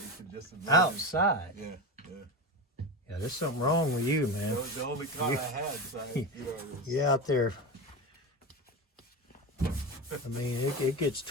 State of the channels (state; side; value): normal; both; correlation 0.22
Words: can just imagine. Outside. Yeah. Yeah, there's something wrong with you, man. That was the only car I had. So it was, You out there. I mean, it gets